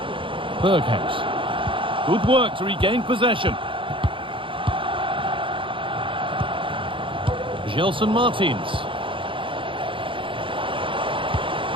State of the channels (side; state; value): left; late; 0.25 ms